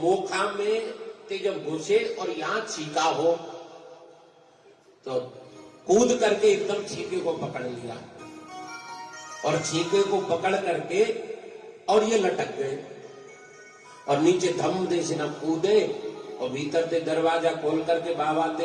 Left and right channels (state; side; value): identical; both; correlation 1.00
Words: मोखा में ते जब घुसे और यहाँ छीका हो तो कूद करके एकदम छीके को पकड़ लिया और छीके को पकड़ करके और ये लटक गए और नीचे धम दे से न कूदे और भीतर से दरवाजा खोल करके बाबा